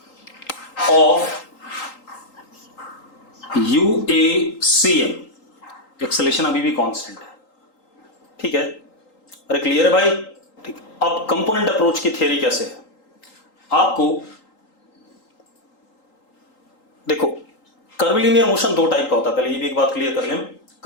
ऑफ UACM, एक्सेलेरेशन अभी भी कांस्टेंट है, ठीक है? अरे क्लियर है भाई? ठीक। अब कंपोनेंट अप्रोच की थ्योरी कैसे है, आपको देखो, कर्विलिनियर मोशन दो टाइप का होता है, पहले ये भी एक बात क्लियर कर लें,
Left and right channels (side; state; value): right; late; 3.8 ms